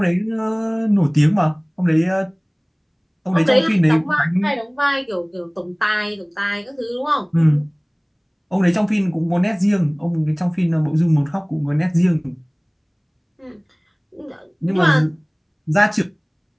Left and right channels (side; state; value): both; identical; correlation 1.00